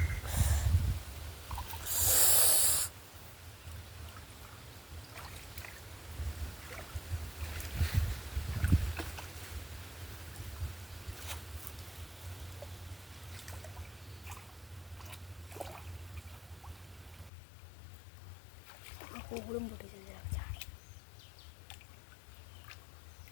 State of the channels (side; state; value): right; drops out; at 17.3 s